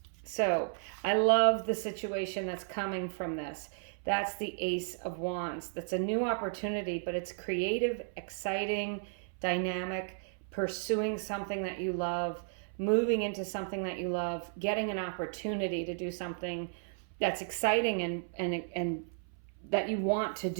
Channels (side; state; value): left; silent; 55 dB below the other